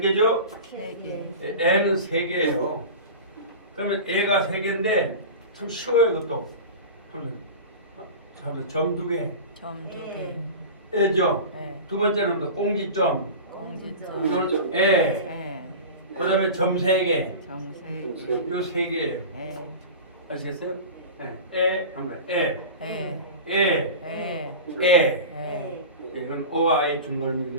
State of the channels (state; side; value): inverted; both; correlation -0.31